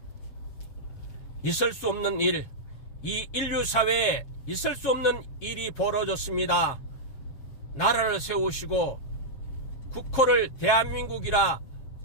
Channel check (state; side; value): late; right; 7.4 ms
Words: 있을 수 없는 일, 이 인류사회에 있을 수 없는 일이 벌어졌습니다. 나라를 세우시고 국호를 대한민국이라